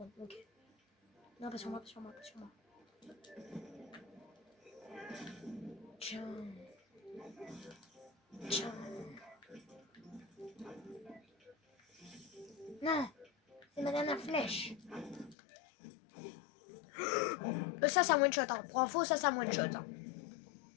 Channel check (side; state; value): right; drops out; at 15.4 s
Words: Ok. Non, pas sur moi. Tiens. Non. C'est ma dernière flèche. Ça, c'est un one shot. Hein. Pour info, ça, c'est un one shot. Hein.